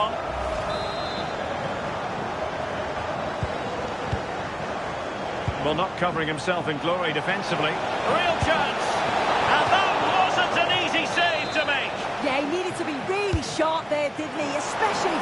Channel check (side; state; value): both; identical; correlation 1.00